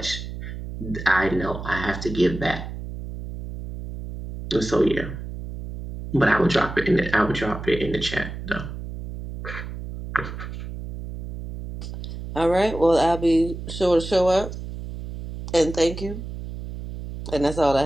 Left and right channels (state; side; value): noise; right; hum, 9 dB below the sound